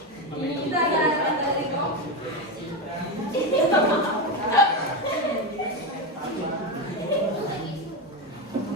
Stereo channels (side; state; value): both; normal; correlation 0.14